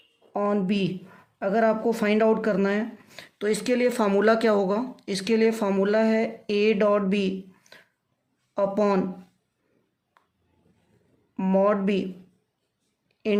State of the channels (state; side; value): identical; both; correlation 1.00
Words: on B अगर आपको फाइंड आउट करना है तो इसके लिए फार्मूला क्या होगा। इसके लिए फार्मूला है A dot B upon mod B